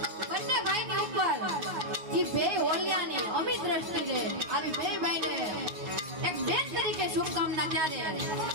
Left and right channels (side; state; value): left; late; 9.4 ms